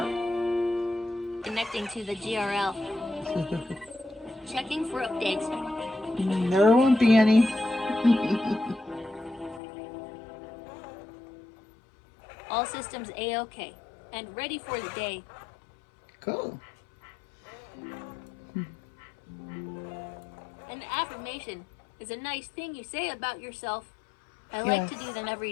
Connecting to the GRL. Checking for updates. There won't be any. All systems A-OK. And ready for the day. Cool. An affirmation is a nice thing you say about yourself. I like to Yes. do them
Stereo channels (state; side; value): drops out; right; at 9.6 s